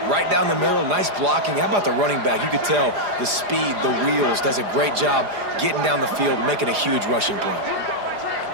right down the middle, nice blocking. How about the running back? You could tell the speed, the wheels, does a great job getting down the field, making a huge rushing play.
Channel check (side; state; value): left; late; 4.9 ms